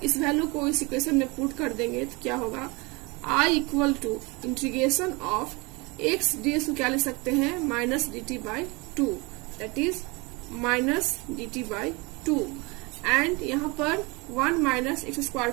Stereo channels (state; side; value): quieter; left; 26.7 dB